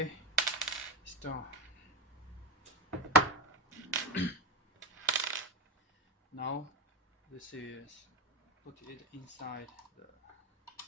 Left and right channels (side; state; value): both; normal; correlation 0.19